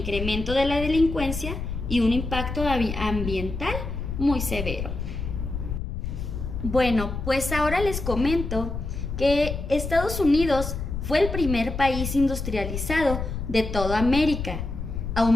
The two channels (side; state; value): left; noise; rumble, 5 dB below the sound